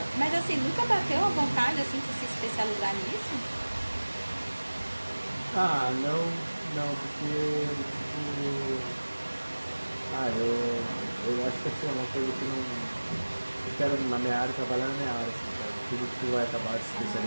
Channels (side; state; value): both; inverted; correlation -1.00